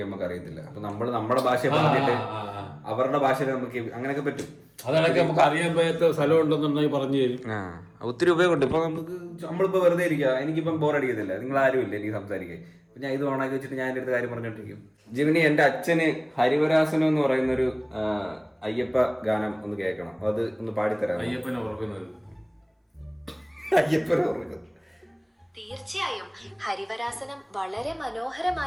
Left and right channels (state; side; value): identical; both; correlation 1.00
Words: നമുക്ക് അറിയത്തില്ല. അപ്പൊ നമ്മൾ നമ്മുടെ ഭാഷ പറഞ്ഞിട്ട് അവരുടെ ഭാഷയിൽ നമുക്ക് അങ്ങനെയൊക്കെ പറ്റും. അതാണെങ്കിൽ നമുക്ക് അറിയാൻ പറ്റാത്ത സ്ഥലം ഉണ്ടെന്നുണ്ടെങ്കിൽ പറഞ്ഞു തരും. ഒത്തിരി ഉപയോഗമുണ്ട്. ഇപ്പൊ നമ്മളിപ്പോ വെറുതെ ഇരിക്കുക, എനിക്കിപ്പം ബോറടിക്കത്തില്ല, നിങ്ങൾ ആരും ഇല്ല എനിക്ക് സംസാരിക്കാൻ. അപ്പൊ ഞാൻ ഇത് ഓണാക്കി വെച്ചിട്ട് ഞാൻ എൻ്റെ അടുത്ത് കാര്യം പറഞ്ഞോണ്ടിരിക്കും. ജിമിനി, എന്റെ അച്ഛന് ഹരിവരാസനം എന്ന് പറയുന്നൊരു അയ്യപ്പ ഗാനം ഒന്ന് കേൾക്കണം. അത് ഒന്ന് പാടിത്തരാം. അയ്യപ്പനെ ഓർക്കുന്നത്. അയ്യപ്പനെ ഓർക്കുന്നത്. തീർച്ചയായും ഹരിവരാസനം വളരെ